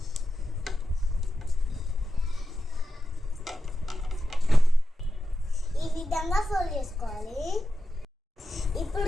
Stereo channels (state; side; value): normal; both; correlation 0.91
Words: ఈ విధంగా ఫోల్డ్ చేసుకోవాలి.